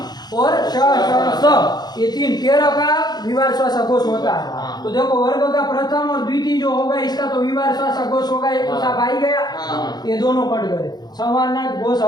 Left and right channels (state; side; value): late; right; 0.20 ms